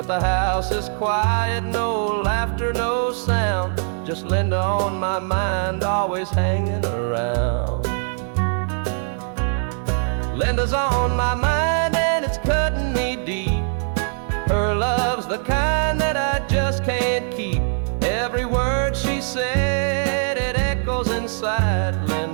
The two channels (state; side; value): silent; left; 62 dB below the other